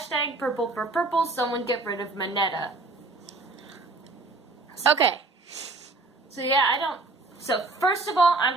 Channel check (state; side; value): quieter; left; 3.4 dB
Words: purple for purple, someone get rid of Mineta. Okay. So yeah, So first of all,